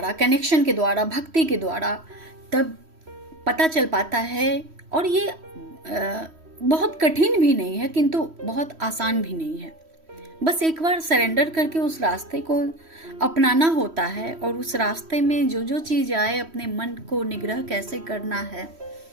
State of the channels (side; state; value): left; late; 3.1 ms